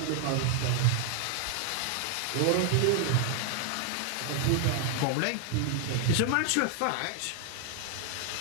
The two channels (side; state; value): both; different; correlation 0.00